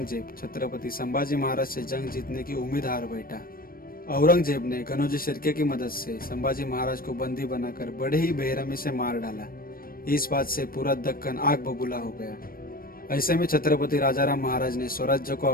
छत्रपति संभाजी महाराज से जंग जीतने की उम्मीद हार बैठा। औरंगजेब ने कनौजी शिर्के की मदद से संभाजी महाराज को बंदी बनाकर बड़े ही बेरहमी से मार डाला। इस बात से पूरा दक्कन आग बबूला हो गया। ऐसे में छत्रपति राजाराम महाराज ने स्वराज्य को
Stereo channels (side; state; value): right; late; 0.42 ms